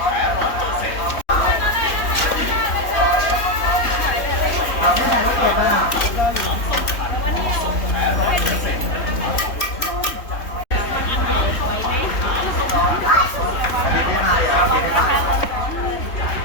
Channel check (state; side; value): late; right; 3.4 ms